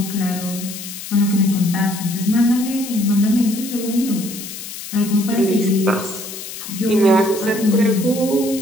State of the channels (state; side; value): noise; left; hiss, 10 dB below the sound